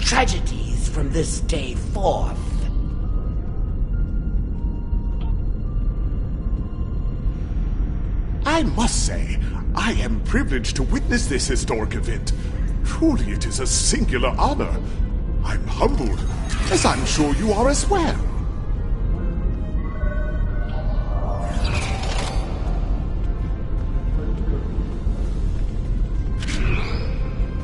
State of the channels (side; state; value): both; identical; correlation 1.00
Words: from this day forth. I must say, I am privileged to witness this historic event. Truly, it is a singular honor. I'm humbled, as I'm sure you are as well.